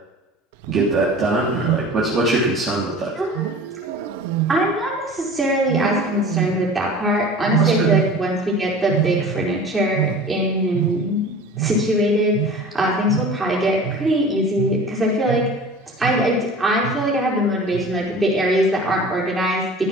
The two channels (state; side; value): normal; both; correlation 0.41